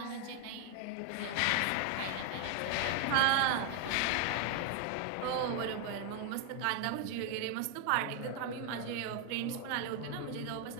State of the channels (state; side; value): different; both; correlation 0.00